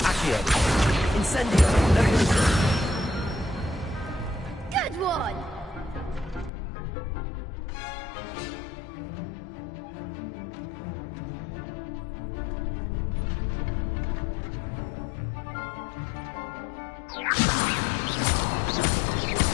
Incendio. Levioso. Good one!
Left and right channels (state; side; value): drops out; right; at 6.5 s